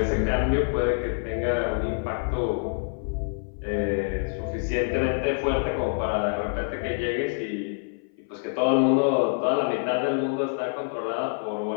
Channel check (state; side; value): silent; right; 56 dB below the other